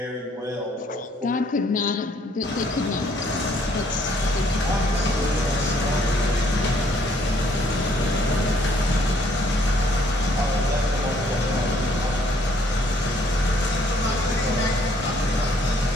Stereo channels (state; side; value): normal; both; correlation 0.65